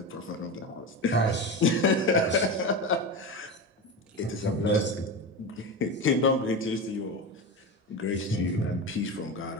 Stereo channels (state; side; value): normal; both; correlation 0.22